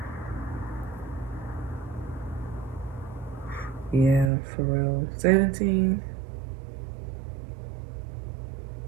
Yeah, for real. 17.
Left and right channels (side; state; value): left; drops out; at 4.3 s